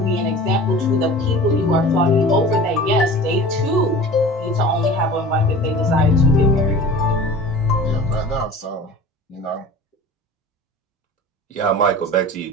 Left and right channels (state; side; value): normal; both; correlation 0.39